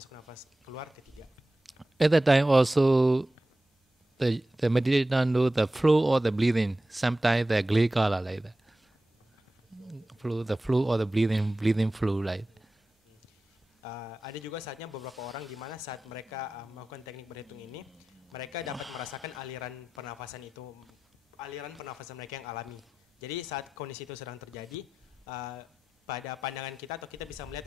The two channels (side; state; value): both; normal; correlation 0.95